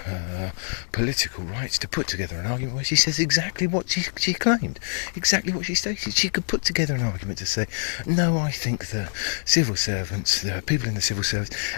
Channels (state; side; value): silent; right; 59 dB below the other